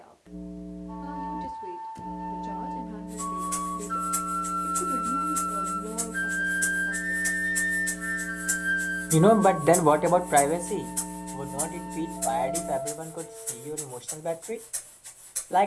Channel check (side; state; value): both; identical; correlation 1.00